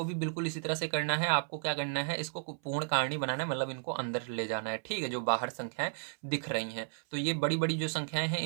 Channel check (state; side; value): silent; left; 55 dB below the other